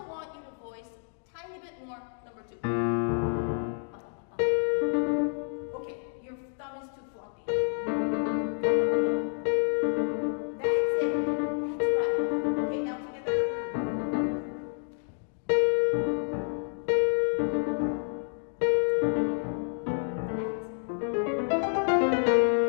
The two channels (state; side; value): silent; right; 59 dB below the other